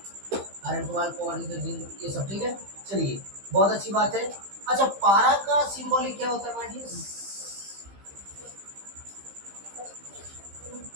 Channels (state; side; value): late; left; 15 ms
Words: Iron, cobalt, cobalt, zinc, ये सब ठीक है। चलिए, बहुत अच्छी बात है। अच्छा, पारा का सिंबॉलिक क्या होता है माय डियर?